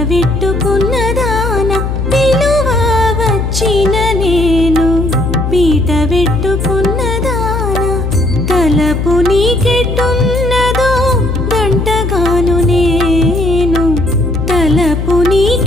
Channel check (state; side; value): noise; left; hum, 2 dB below the sound